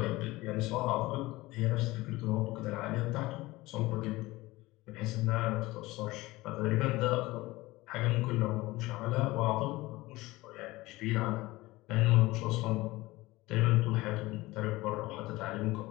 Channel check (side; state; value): right; quieter; 19.8 dB